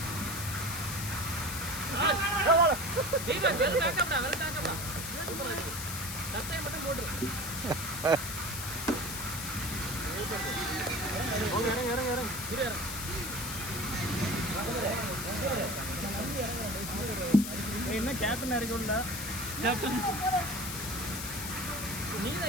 தீபக் வெல் பேக்கப்டா சட்டை மட்டும் போடு. இறங்க என்ன கேப்டன் இறக்கும்டா. கேப்டன்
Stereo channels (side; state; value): left; noise; hiss, 6 dB below the sound